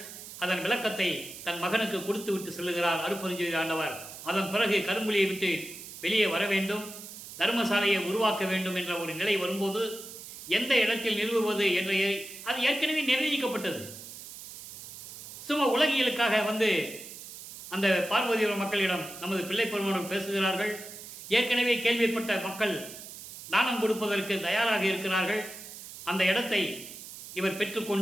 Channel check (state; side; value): noise; right; hiss, 13 dB below the sound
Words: அதன் விளக்கத்தை தன் மகனுக்கு கொடுத்து விட்டு செல்லுகிறார் அருட்பெருஞ்சோதி ஆண்டவர். அதன் பிறகு கரும்புலியை விட்டு வெளியே வர வேண்டும், தர்மசாலையை உருவாக்க வேண்டும் என்ற ஒரு நிலை வரும்போது எந்த இடத்தில் நிறுவுவது என்ற அது ஏற்கனவே நிர்ணயிக்கப்பட்டது. சும்மா உலகியலுக்காக அந்த பார்வதிபுர மக்களிடம் நமது பிள்ளை பெருமானோர் பேசுகிறார்கள். ஏற்கனவே கேள்விப்பட்ட மக்கள் தானம் கொடுப்பதற்கு தயாராக இருக்கிறார்கள். அந்த இடத்தை இவர்